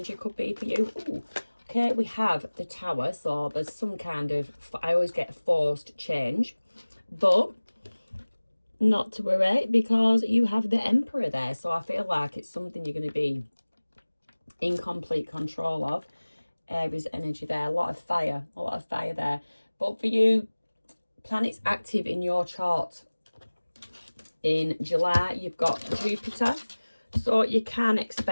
could be for you. Ooh. Okay, we have the Tower, so there's some kind of, I always get forced change, but not to worry because you have the Emperor there. So I feel like it's something you're going to be in complete control of. Aries energy there, a lot of fire there. But for you, planets active in your chart in July, you've got Jupiter, so you can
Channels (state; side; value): inverted; both; correlation -1.00